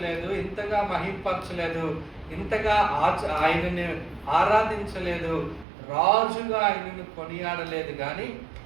ఇంతగా మహింపరచలేదు, ఇంతగా ఆయనని ఆరాధించలేదు, రాజుగా ఆయనను కొనియాడలేదు. కానీ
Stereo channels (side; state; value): left; drops out; at 5.7 s